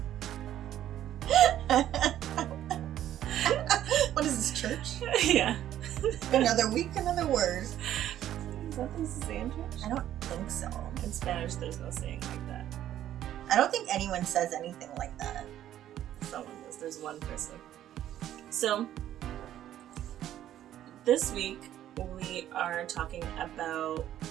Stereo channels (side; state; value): left; quieter; 11.9 dB